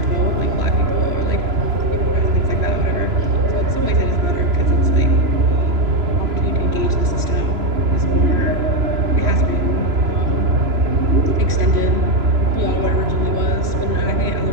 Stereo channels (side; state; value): left; late; 3.0 ms